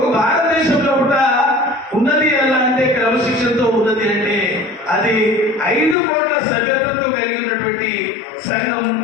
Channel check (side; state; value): right; drops out; at 6.0 s